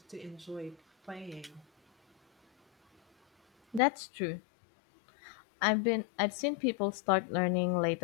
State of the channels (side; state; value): right; drops out; at 3.8 s